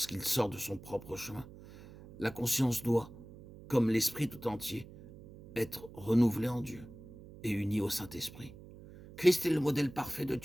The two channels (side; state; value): right; noise; hum, 18 dB below the sound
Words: sort de son propre chemin, la conscience doit, comme l'esprit tout entier, être renouvelée en Dieu et unie au Saint-Esprit. Christ est le modèle parfait de